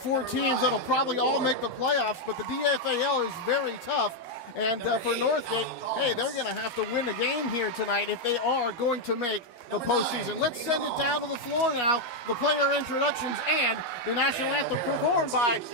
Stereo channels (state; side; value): late; right; 12 ms